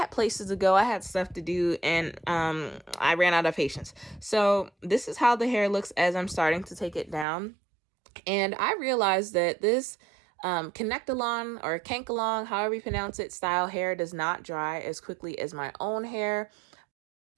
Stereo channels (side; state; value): left; drops out; at 7.2 s